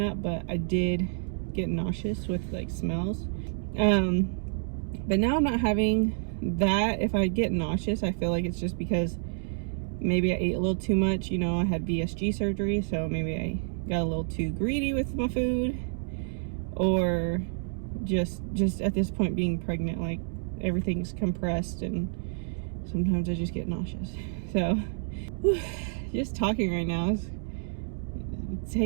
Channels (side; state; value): left; silent; digital silence